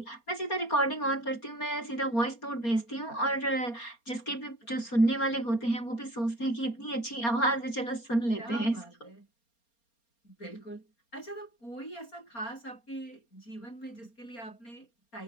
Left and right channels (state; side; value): late; right; 4.3 ms